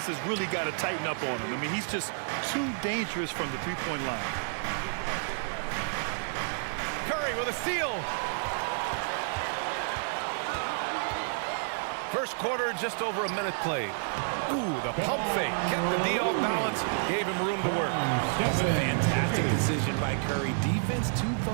has really got to tighten up on him. I mean, he's just too dangerous from the three-point line. Curry with a steal. First quarter, just over a minute played. Ooh, the pump fake. Kept the D off balance, gave him room to work. That's a fantastic decision by Curry. Defense too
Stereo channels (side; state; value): left; silent; digital silence